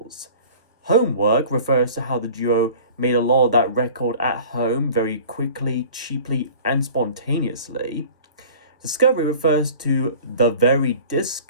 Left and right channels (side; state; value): both; inverted; correlation -0.44